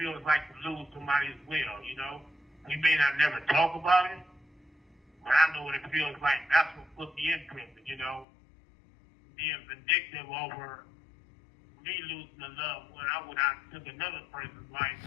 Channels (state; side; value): drops out; right; at 8.2 s